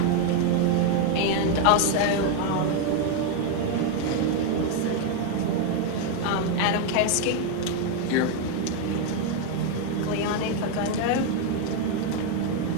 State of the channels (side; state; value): both; different; correlation 0.01